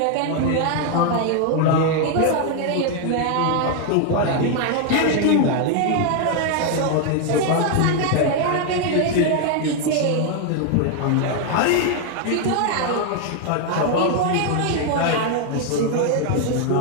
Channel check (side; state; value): both; different; correlation 0.00